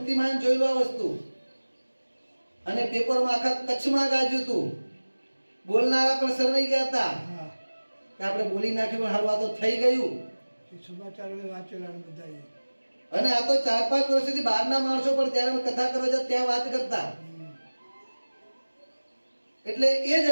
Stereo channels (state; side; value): inverted; both; correlation -1.00